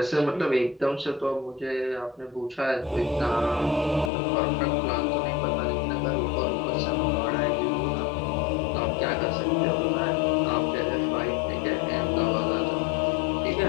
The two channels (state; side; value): drops out; right; at 4.1 s